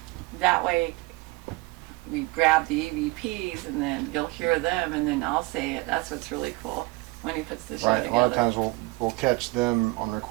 That way, we grab the EVPs, and then you'll hear them, and then I'll say it. That's what's really cool when he puts the show Right. together. A lot of times we'll catch them on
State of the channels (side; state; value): left; quieter; 23.2 dB